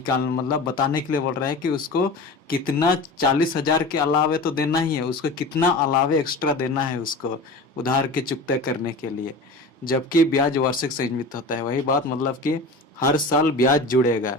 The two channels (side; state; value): right; quieter; 3.0 dB